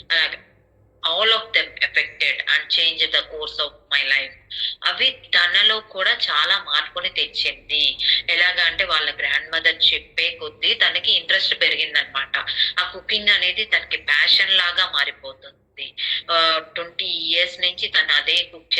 అలాగే all of them affected and change the course of my life. అవి తనలో కూడా చాలా మార్పుని తెచ్చింది. ఎలాగా అంటే వాళ్ళ గ్రాండ్ మదర్ చెప్పే కొద్దీ తనకి ఇంట్రెస్ట్ పెరిగిందనమాట. ఆ కుకింగ్ అనేది తనకి ప్యాషన్ లాగా మారిపోతుంది. 20 years నుంచి తను అదే కుక్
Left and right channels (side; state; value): both; identical; correlation 1.00